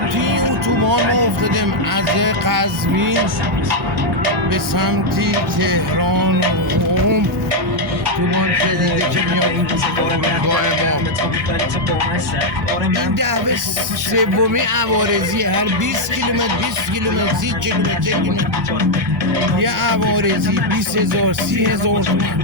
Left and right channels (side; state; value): both; normal; correlation 0.00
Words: توی اتوبان ما افتادیم از قزوین به سمتی تهران و قم. اتوبان جدیده که میاد فرودگاه ما. این دعوه سومی عوارضی، هر 20 کیلومتر 20 کیلومتر 30 کیلومتر یه عوارضی 20,000 30,000